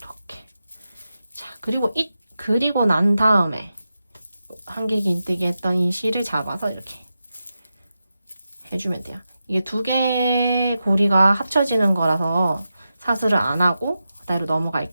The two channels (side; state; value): both; inverted; correlation -0.90